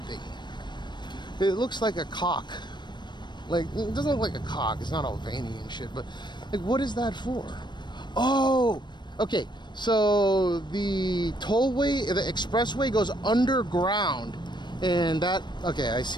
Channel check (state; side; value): late; right; 0.22 ms